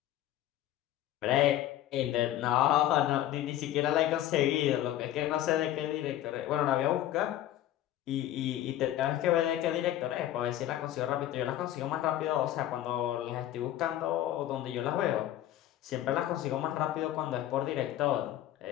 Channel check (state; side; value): quieter; right; 12.9 dB